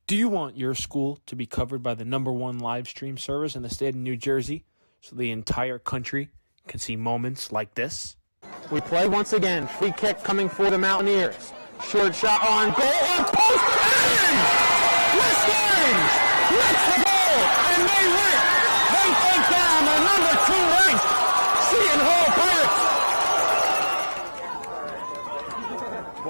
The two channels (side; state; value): both; inverted; correlation -1.00